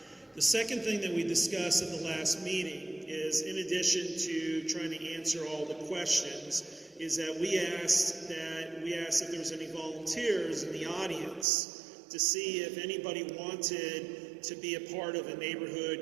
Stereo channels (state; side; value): drops out; left; at 11.5 s